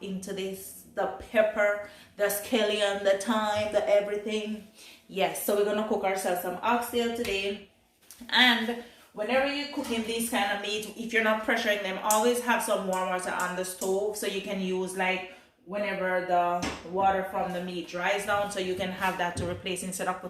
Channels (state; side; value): identical; both; correlation 1.00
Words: into this. The pepper, the scallion, the thyme, the everything. Yes, so we're gonna cook ourselves some oxtail today. And whenever you're cooking this kind of meat, if you're not pressuring them, always have some warm water on the stove so you can use like whenever the water from the meat dries down, so you can have that to replace instead of